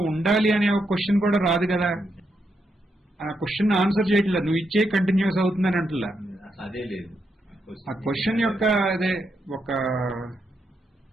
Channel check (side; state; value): both; normal; correlation 0.82